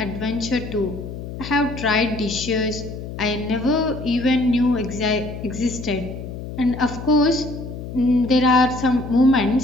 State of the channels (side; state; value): left; noise; hum, 9 dB below the sound